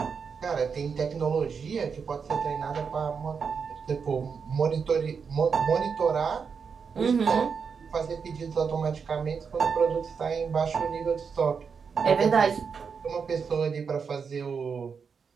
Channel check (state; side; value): quieter; left; 6.0 dB